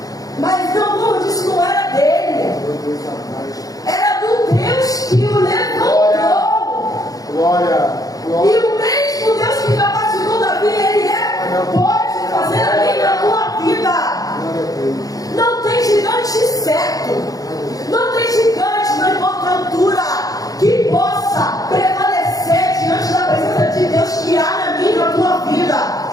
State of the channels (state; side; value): late; right; 0.17 ms